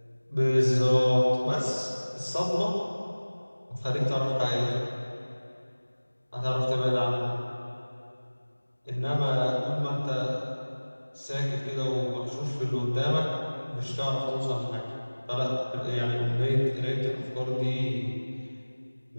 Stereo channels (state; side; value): inverted; both; correlation -1.00